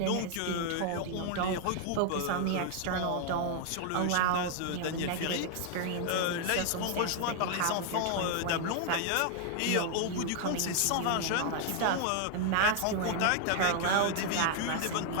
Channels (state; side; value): different; both; correlation 0.00